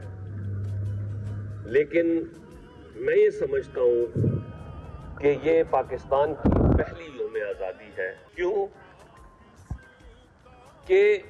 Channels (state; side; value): identical; both; correlation 1.00